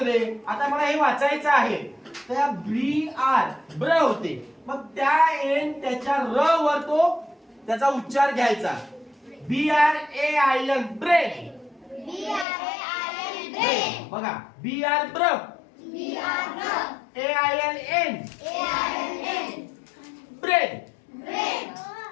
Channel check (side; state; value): right; drops out; at 12.5 s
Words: रे, आता मला हे वाचायचं आहे तर ब्री आर ब्र होते मग त्या एन त्याच्या र वर तो त्याचा उच्चार घ्यायचा. BRAIN brain. brain. बघा BR ब्र. AIN brain.